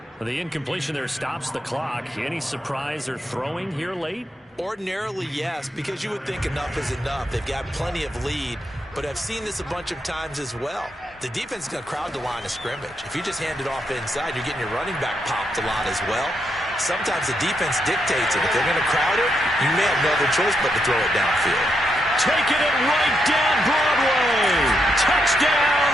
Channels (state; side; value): normal; both; correlation 0.81